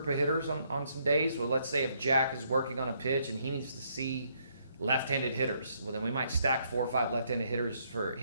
of hitters on some days. Well, let's say if Jack is working on a pitch and he needs to see left-handed hitters, well then we might stack 4 or 5 left-handed hitters for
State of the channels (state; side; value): inverted; both; correlation -0.72